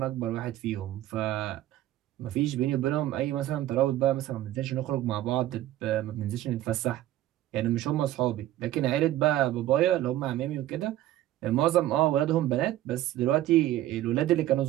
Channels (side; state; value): left; quieter; 14.0 dB